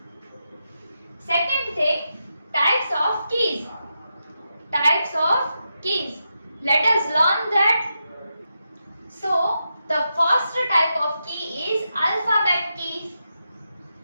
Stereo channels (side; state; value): both; inverted; correlation -0.87